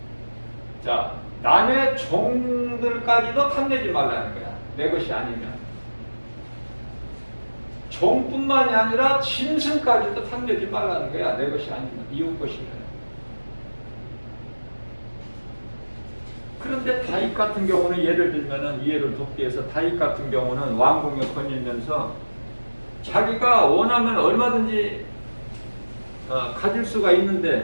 자, 남의 종들까지도 탐내지 말라는 거야. 내 것이 아니면. 종뿐만이 아니라 짐승까지도 탐내지 말라는 거야. 내 것이 아니면. 이웃 것이면. 그런데 다윗 같은 경우는 예를 들면은 이해를 돕기 위해서 다윗 같은 경우는 왕궁에 거닐면서 자기가 원하면 얼마든지 가질 수가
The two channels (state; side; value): inverted; both; correlation -1.00